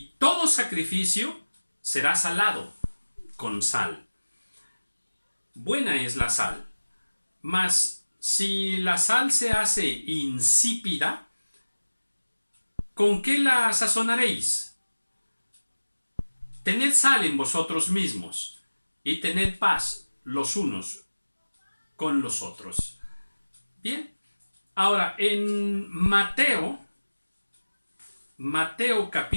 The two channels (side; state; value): both; inverted; correlation -1.00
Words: todo sacrificio será salado con sal. Buena es la sal, mas si la sal se hace insípida, ¿con qué la sazonaréis? Tened sal en vosotros mismos, y tened paz los unos con los otros. Bien, ahora en Mateo